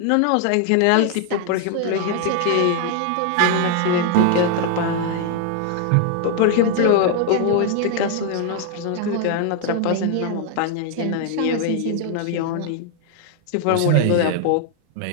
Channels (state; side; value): different; both; correlation 0.00